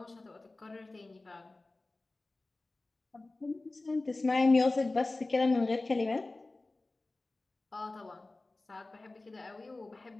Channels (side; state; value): right; quieter; 3.1 dB